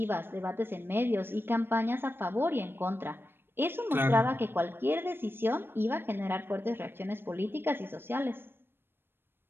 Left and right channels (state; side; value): late; left; 0.10 ms